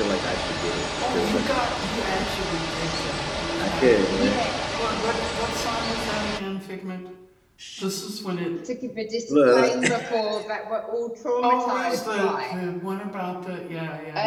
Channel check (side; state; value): both; identical; correlation 1.00